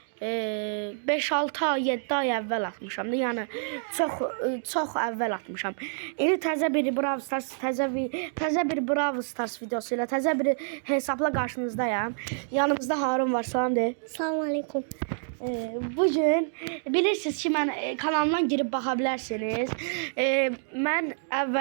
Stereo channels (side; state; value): left; silent; digital silence